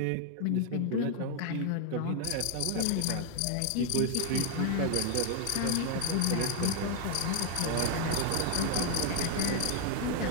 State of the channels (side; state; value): both; different; correlation 0.00